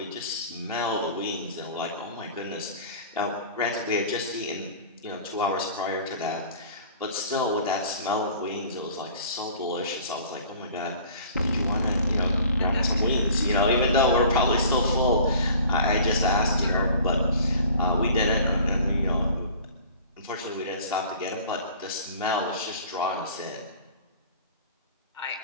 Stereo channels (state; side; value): inverted; both; correlation -0.47